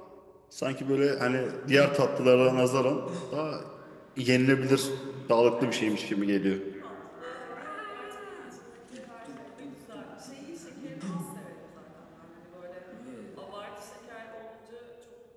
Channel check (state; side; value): identical; both; correlation 1.00